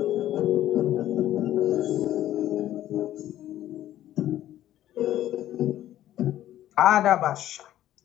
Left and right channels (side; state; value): right; quieter; 12.9 dB